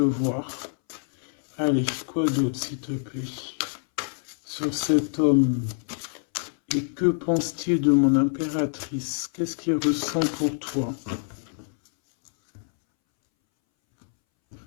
voir. Allez, quoi d'autre s'il te plaît? Sur cet homme. Et que pense-t-il de mon impératrice? Qu'est-ce qu'il ressent pour toi?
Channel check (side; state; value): right; silent; 61 dB below the other